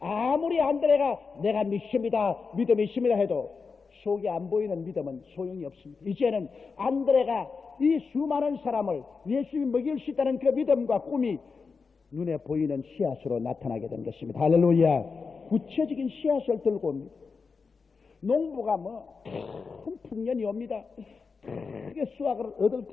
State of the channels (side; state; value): right; quieter; 4.9 dB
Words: 안드레가 내가 믿습니다 믿음이 있습니다 해도 속에 안 보이는 믿음은 소용이 없습니다. 이제는 안드레가 이 수많은 사람을 예수님이 먹일 수 있다는 그 믿음과 꿈이 눈에 보이는 씨앗으로 나타나게 된 것입니다. 할렐루야. 구체적인 씨앗을 들고 옵니다. 농부가 큰 풍년이 옵니다. 크게 수확을 얻을